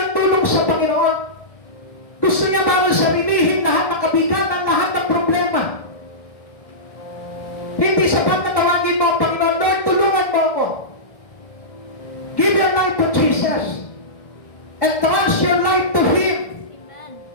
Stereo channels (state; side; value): late; right; 1.1 ms